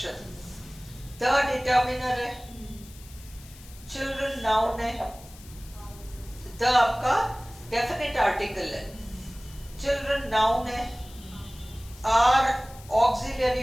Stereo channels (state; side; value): noise; left; hiss, 21 dB below the sound